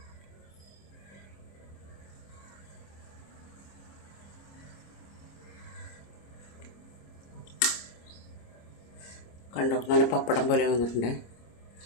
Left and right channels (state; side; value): late; right; 26 ms